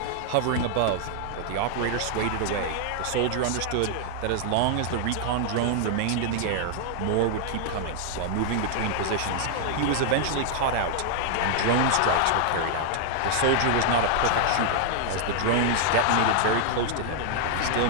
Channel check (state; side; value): different; both; correlation 0.00